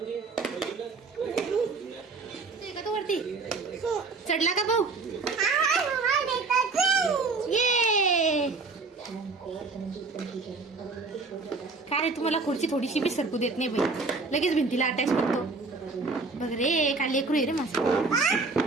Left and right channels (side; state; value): left; quieter; 4.1 dB